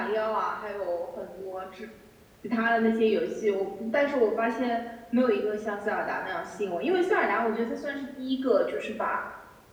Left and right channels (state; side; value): identical; both; correlation 1.00